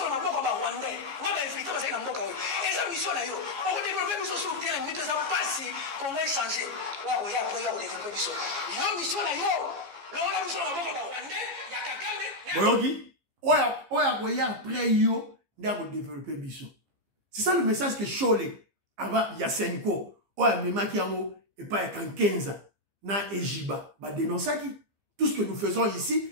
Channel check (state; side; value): late; left; 15 ms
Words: na mboka ba Rwandais. Na ba infiltrer baza na mboka oyo. Eza mission na yo. O ko développer biso sur terrain, mais ça passe comment changer. Wa ko ya pour yo développer biso. Yo mission na yo. Lola biso na mboka ba Rwandais ya Kagame. Boyoki, oya koya après yo nda ko développer biso. C'est ça le message que Chole avant Yasenko. Oya memaki yango et pas ya Kankenza na Ejiba ba dénonçaki. Tout ce que nous faisons